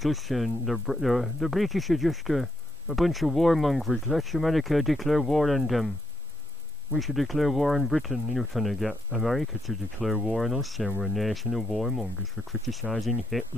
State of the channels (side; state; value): both; normal; correlation 0.91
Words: us, and the British are just a bunch of warmongers. Let America declare war on them. We should declare war on Britain. Trying to get America to declare war on us, saying we're a nation of warmongers for criticising